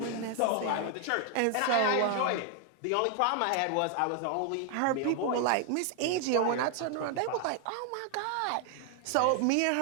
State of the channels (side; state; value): both; different; correlation 0.00